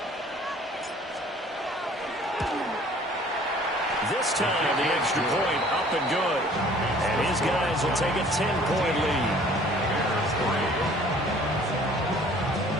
This time, the extra point up and good. And his guys will take a 10-point lead.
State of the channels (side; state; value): both; normal; correlation 0.53